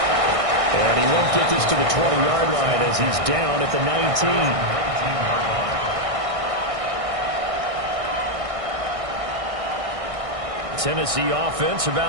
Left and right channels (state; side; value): late; left; 1.6 ms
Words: And he won't get this to the 20-yard line as he's down at the 19. Tennessee offense